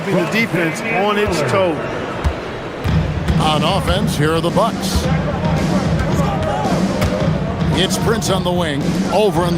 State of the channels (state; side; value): identical; both; correlation 1.00